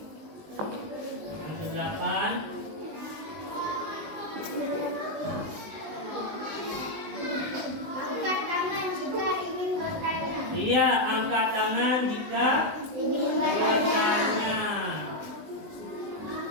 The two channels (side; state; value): left; late; 19 ms